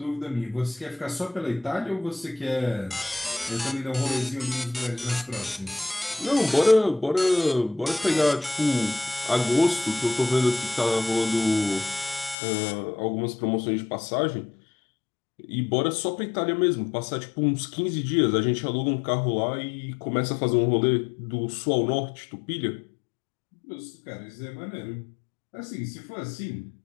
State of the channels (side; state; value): right; drops out; at 12.4 s